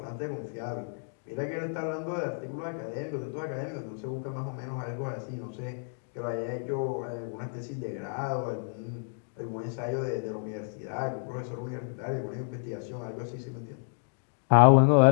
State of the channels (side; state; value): right; silent; digital silence